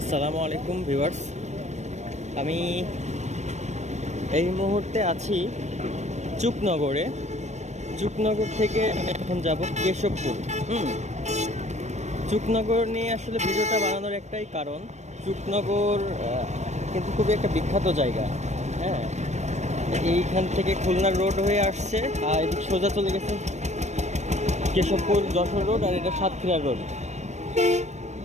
আসসালামু আলাইকুম ভিউয়ার্স। আমি এই মুহূর্তে আছি চুকনগরে। চুকনগর থেকে আমি এখন যাব কেশবপুর। চুকনগর নিয়ে আসলে ভিডিওটা বানানোর একটাই কারণ, চুকনগর কিন্তু খুবই একটা বিখ্যাত জায়গা। হ্যাঁ, এইখান থেকে খুলনার রোড হয়ে আসছে আর এদিক সোজা চলে গেছে কেশবপুর যশোর রোড, আর এটা সাতক্ষীরা রোড।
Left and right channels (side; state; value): left; late; 0.33 ms